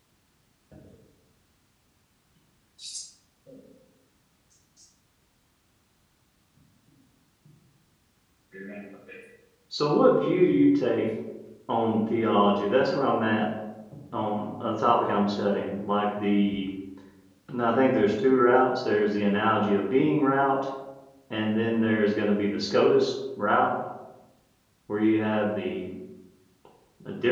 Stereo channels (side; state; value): both; identical; correlation 1.00